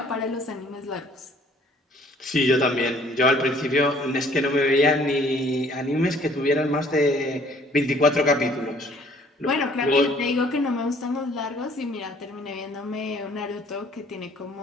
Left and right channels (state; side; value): normal; both; correlation 0.58